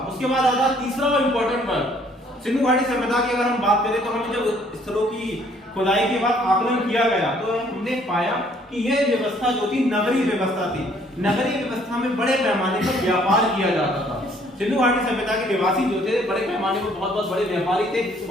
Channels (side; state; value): both; normal; correlation 0.62